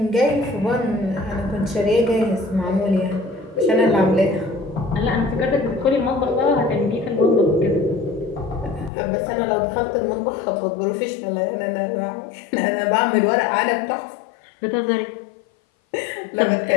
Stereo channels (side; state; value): right; drops out; at 8.9 s